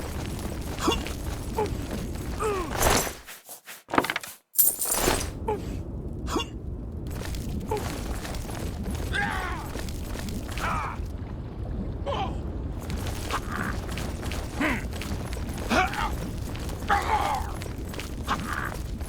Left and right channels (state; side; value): identical; both; correlation 1.00